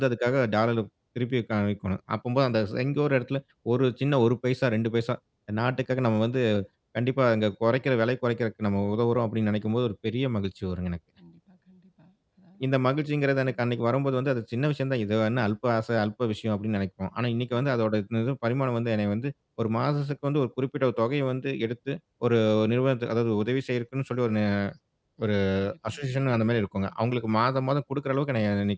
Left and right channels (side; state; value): both; identical; correlation 1.00